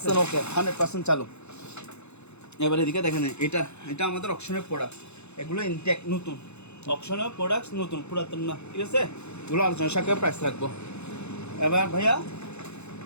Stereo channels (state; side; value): late; right; 0.81 ms